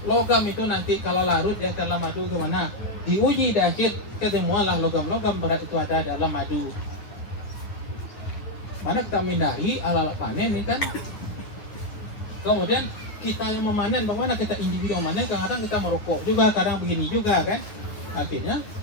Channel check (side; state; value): right; late; 9.4 ms